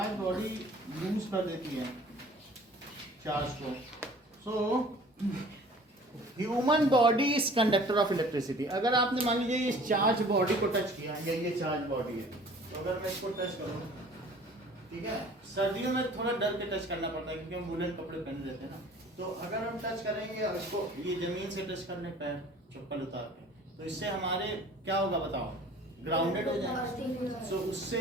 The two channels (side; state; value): both; normal; correlation 0.48